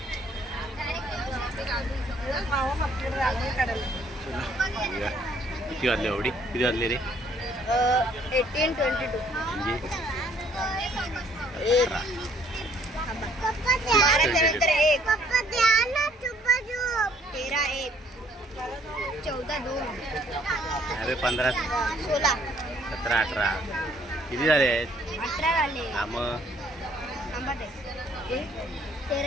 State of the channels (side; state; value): both; normal; correlation 0.63